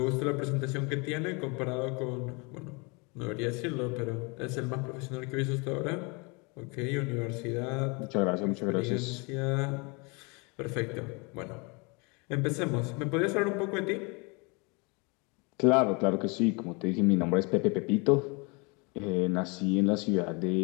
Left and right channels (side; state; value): right; quieter; 30.2 dB